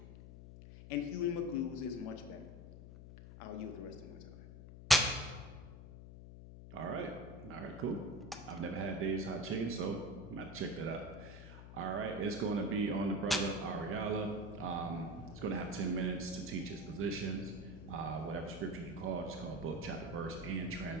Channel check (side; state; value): left; noise; hum, 13 dB below the sound